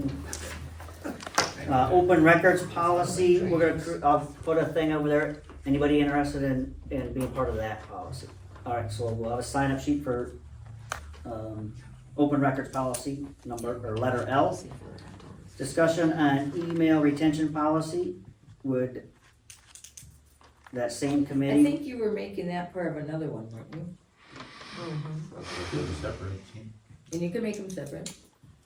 Open records policy, I'll put a thing over there, anybody interested in being part of that policy? Alright, so we'll have a sign up sheet for, open records policy, letter L. Discussion on email retention policy, would that same I committee? think you were making that part of another one, weren't you? And you can make them separate.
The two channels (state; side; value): identical; both; correlation 1.00